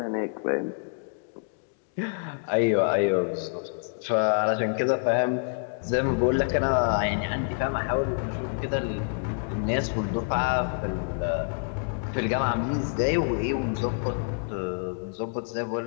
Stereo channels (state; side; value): silent; right; digital silence